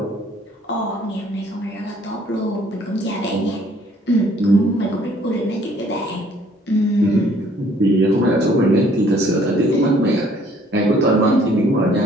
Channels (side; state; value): both; normal; correlation 0.60